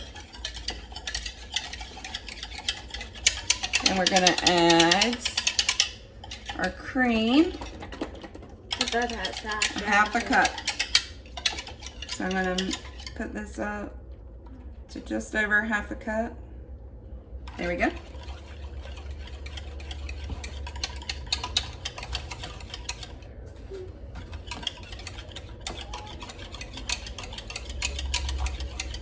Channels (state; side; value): identical; both; correlation 1.00